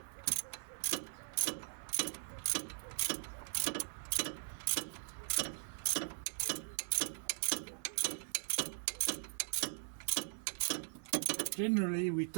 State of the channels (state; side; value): silent; left; 51 dB below the other